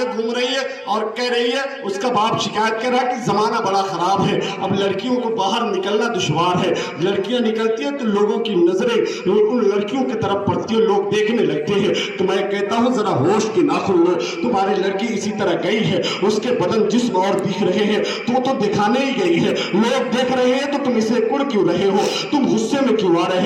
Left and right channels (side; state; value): both; identical; correlation 1.00